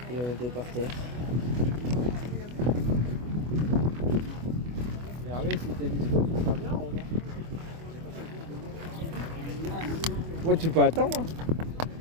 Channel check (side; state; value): left; late; 24 ms